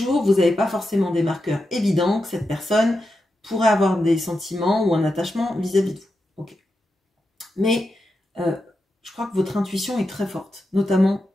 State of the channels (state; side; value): normal; both; correlation 0.88